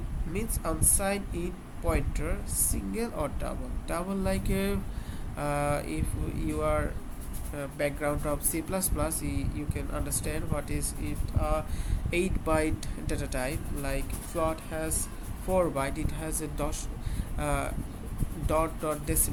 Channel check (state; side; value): identical; both; correlation 1.00